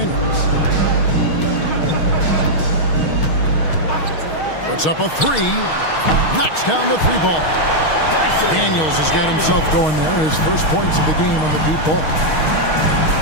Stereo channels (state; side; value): late; right; 6.4 ms